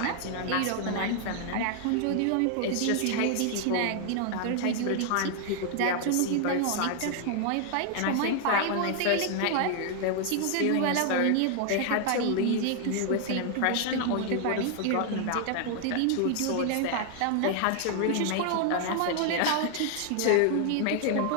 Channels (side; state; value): both; different; correlation 0.00